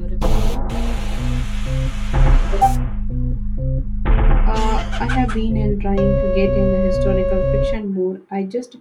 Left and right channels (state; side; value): identical; both; correlation 1.00